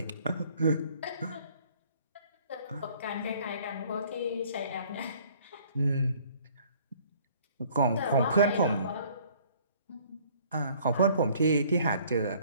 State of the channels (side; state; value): both; inverted; correlation -0.57